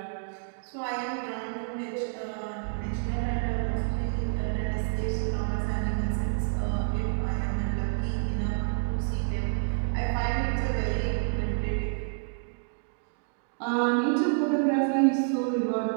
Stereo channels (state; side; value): silent; left; digital silence